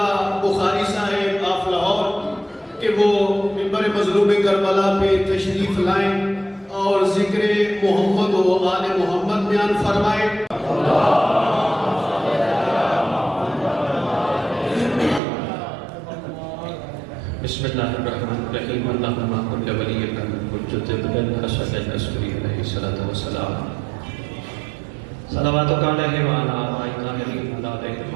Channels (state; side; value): drops out; left; at 15.2 s